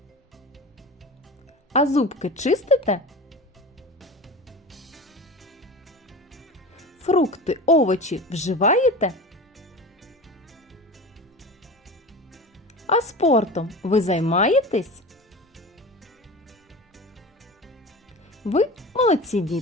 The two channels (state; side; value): normal; both; correlation 0.32